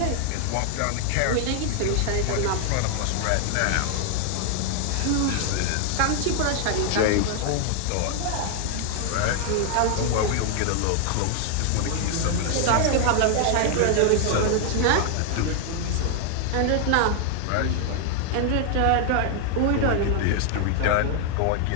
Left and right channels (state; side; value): different; both; correlation 0.00